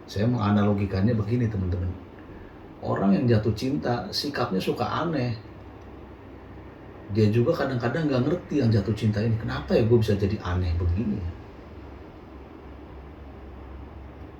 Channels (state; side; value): identical; both; correlation 1.00